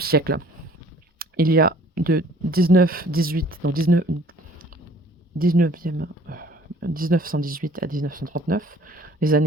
Il y a de 1918 à 1939, les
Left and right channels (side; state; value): both; normal; correlation 0.54